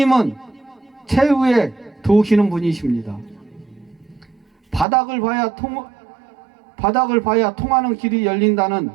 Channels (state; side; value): drops out; left; at 4.9 s